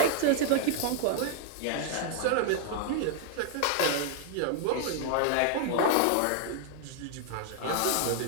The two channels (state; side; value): different; both; correlation 0.00